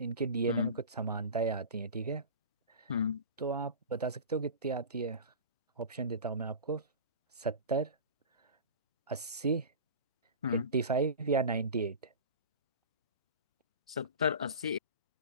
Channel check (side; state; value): both; inverted; correlation -0.32